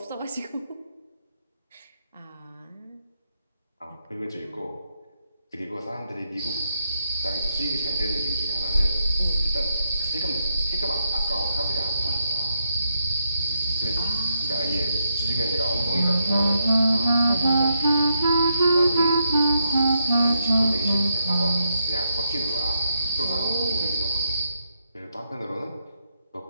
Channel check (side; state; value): both; inverted; correlation -0.80